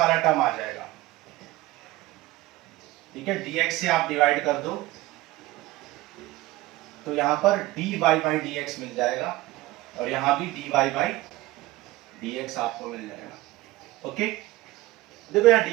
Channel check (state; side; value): quieter; left; 18.2 dB